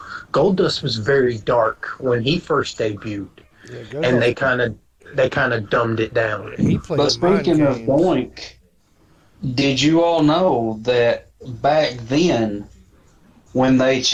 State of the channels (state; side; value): identical; both; correlation 1.00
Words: Gold Dust was very dark when he first debuted, Yeah, go and they ahead. kind of dumbed it down. He played But mind speaking of games. Doink, did you all know that back then, when they